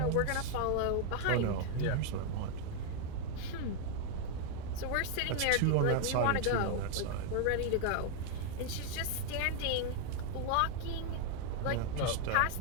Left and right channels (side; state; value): both; different; correlation 0.00